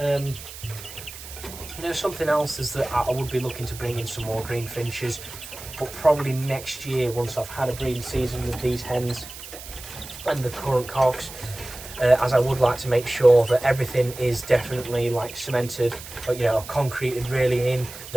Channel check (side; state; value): right; noise; hiss, 14 dB below the sound